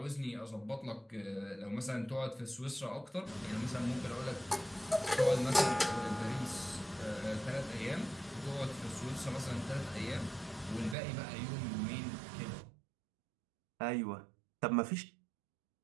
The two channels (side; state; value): left; drops out; at 11.0 s